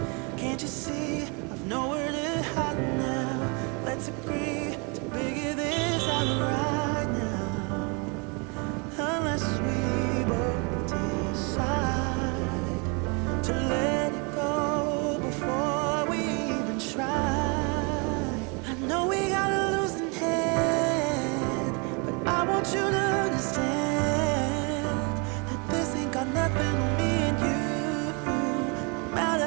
Can't you see I've nowhere to hide now? Let's agree to figure this out right now. Unless we both decide to let it go before we even try. I know we got a losing hand, but I want you to understand that this ain't got nothing on me and you. No matter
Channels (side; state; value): left; quieter; 32.4 dB